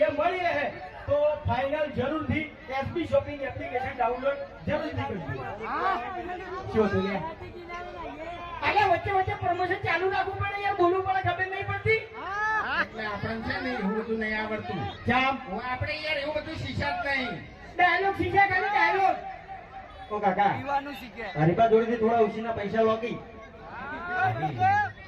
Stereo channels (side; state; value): both; identical; correlation 1.00